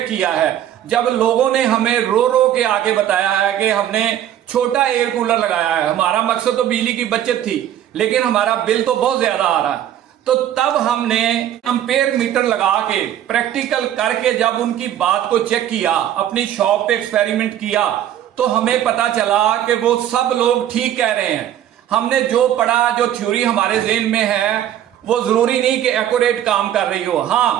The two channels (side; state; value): left; quieter; 11.2 dB